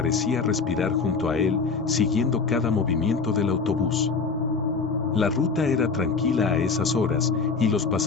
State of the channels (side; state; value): right; quieter; 4.8 dB